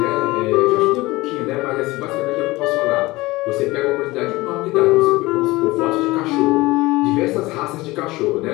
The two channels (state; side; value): quieter; right; 20.5 dB